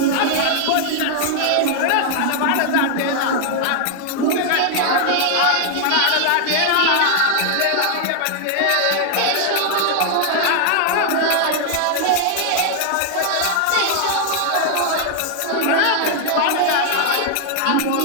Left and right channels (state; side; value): different; both; correlation 0.00